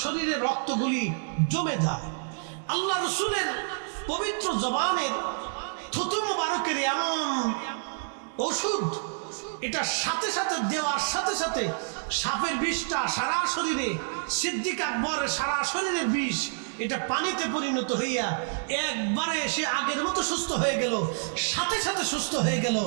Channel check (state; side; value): silent; left; digital silence